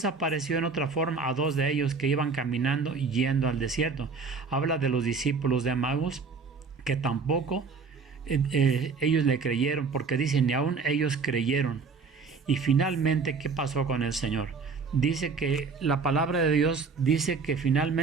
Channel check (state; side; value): quieter; left; 4.8 dB